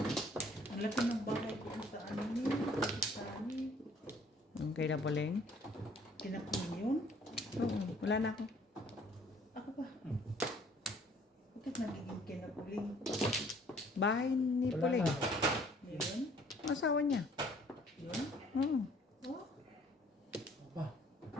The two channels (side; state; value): both; normal; correlation 0.58